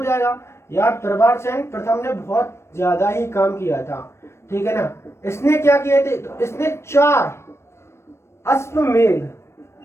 यार, प्रभारसेन प्रथम ने बहुत ज्यादा ही काम किया था, ठीक है ना। इसने क्या किए थे, तो इसने 4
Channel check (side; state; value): right; late; 0.13 ms